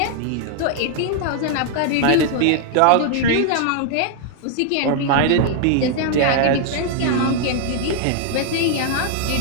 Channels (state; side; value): different; both; correlation 0.00